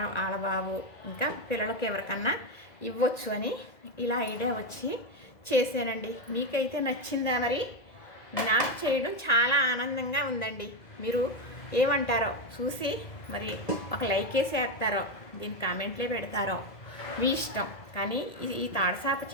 వాళ్ళ బాబు, ఇంకా పిల్లలకి ఎవరికన్నా ఇవ్వచ్చు అని ఇలా ఐడియా వచ్చి చేశానండి. మీకైతే నచ్చిందా? మరి నాకు చేయడం చాలా ఆనందంగా ఉందండి. మీరు ఏమంటారో చూసి మరి ఒక లైక్ వేసి వేస్తారో, దీని కామెంట్లే పెడతారో మీ ఇష్టం. కానీ ఈ తాడుసాప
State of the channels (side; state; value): right; late; 2.0 ms